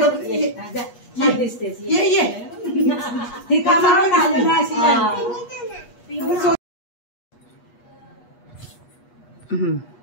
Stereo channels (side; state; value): right; late; 8.3 ms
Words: दिसतेस. ये ती कामावर आली ना अशी.